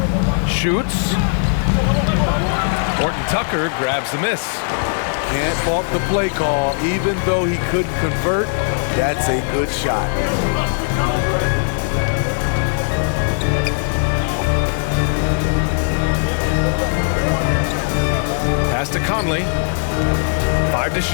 Shoots. Horton Tucker grabs the miss. Can't fault the play call. Even though he couldn't convert, that's a good shot. Pass to Conley. 5 to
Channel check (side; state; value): right; silent; 60 dB below the other